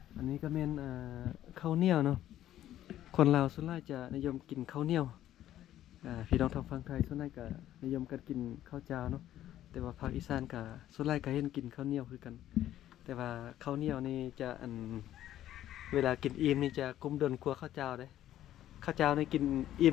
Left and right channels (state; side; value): quieter; right; 12.5 dB